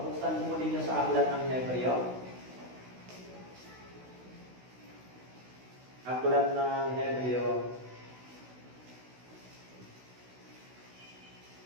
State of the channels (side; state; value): left; late; 16 ms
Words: buksan po ninyo sa aklat ng Hebreo. Aklat ng Hebreo.